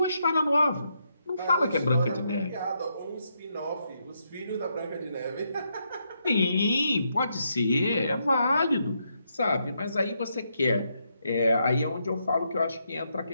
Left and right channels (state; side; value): inverted; both; correlation -0.79